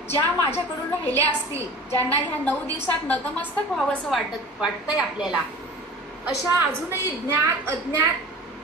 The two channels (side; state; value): both; normal; correlation 0.39